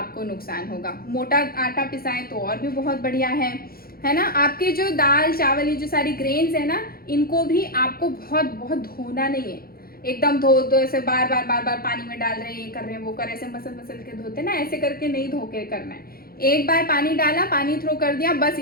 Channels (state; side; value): late; right; 0.44 ms